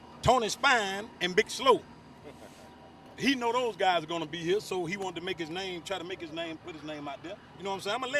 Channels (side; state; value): both; identical; correlation 1.00